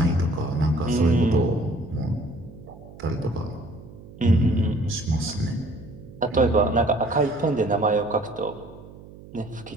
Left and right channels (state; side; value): noise; right; hum, 18 dB below the sound